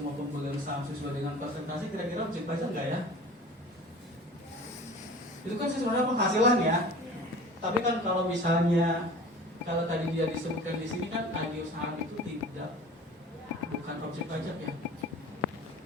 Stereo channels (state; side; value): normal; both; correlation 0.41